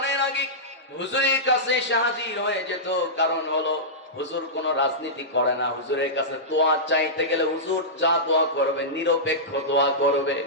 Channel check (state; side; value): normal; both; correlation -0.14